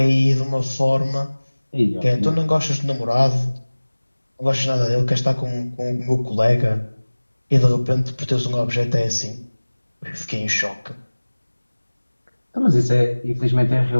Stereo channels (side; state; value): both; inverted; correlation -1.00